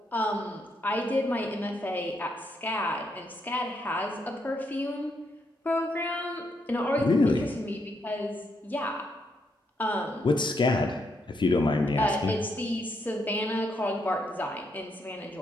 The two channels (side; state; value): both; normal; correlation 0.77